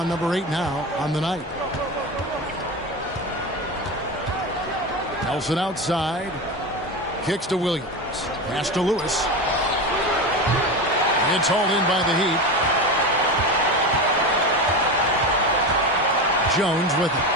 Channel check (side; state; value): both; normal; correlation 0.22